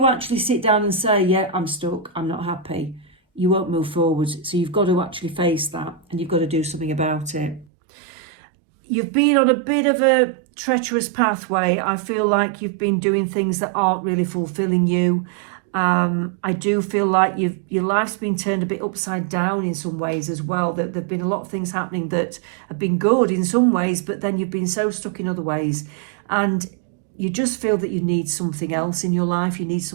actually sit down and say, yeah, I'm stuck, I'm not happy, you won't move forward. So you've got to actually face that and you've got to do something about it. You've been on a bit of a treacherous pathway. I feel like you've been doing things that aren't really fulfilling you. I do feel like your life's been turned a bit upside down in some ways as well. There have been a lot of things happening that have been good in some ways, but then you've been so stuck in other ways. And you just feel that you need something else in your life. You need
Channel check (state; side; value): drops out; left; at 7.7 s